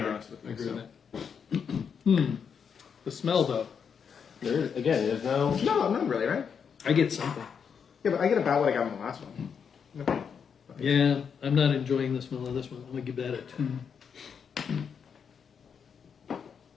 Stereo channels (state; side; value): quieter; right; 6.8 dB